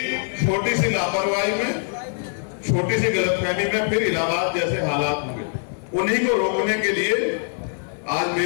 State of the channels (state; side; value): silent; right; 55 dB below the other